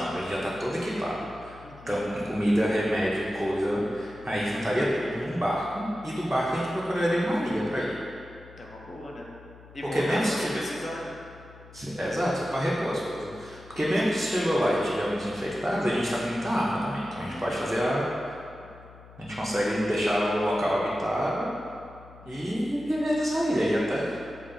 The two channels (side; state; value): left; noise; hum, 20 dB below the sound